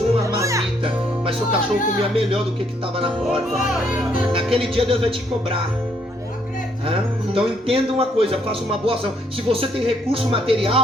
uma marmita, mas seu cachorro comia melhor do que estava na porta. Naquele dia Deus vai te cobrar. Então entenda uma coisa, faça uma boa ação. Se você tem recurso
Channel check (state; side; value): normal; both; correlation 0.70